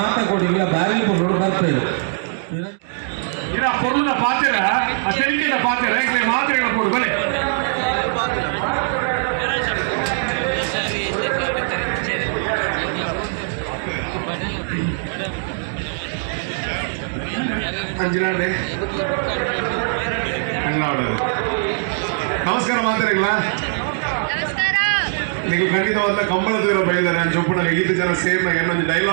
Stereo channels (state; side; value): silent; left; 65 dB below the other